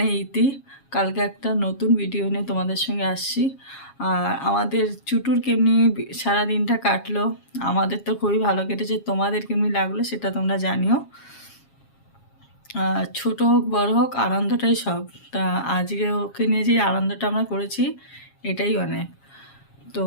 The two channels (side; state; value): right; late; 7.3 ms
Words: ইতি, কালকে একটা নতুন ভিডিও নিয়ে তোমাদের সঙ্গে আসছি। আর আমাদের চুটুর কেমনি সারা দিনটা কাটলো, আমাদের তো খুবই ভালো কেটেছে, তোমাদের কেমনি লাগলো সেটা তোমরা জানিও। ছোট হোক বড় হোক আনন্দটাই সব, তা আজকে ওকে নিয়ে যে আনন্দটা আমরা করেছি এটাই অনেক। তো